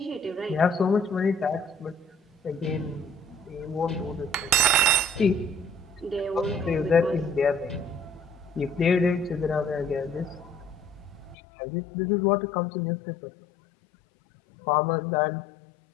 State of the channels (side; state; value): right; drops out; at 11.4 s